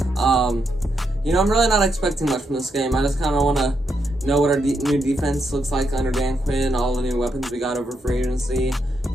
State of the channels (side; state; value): both; normal; correlation 0.81